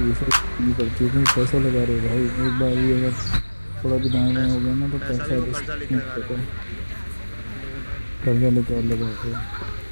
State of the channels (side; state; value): both; inverted; correlation -1.00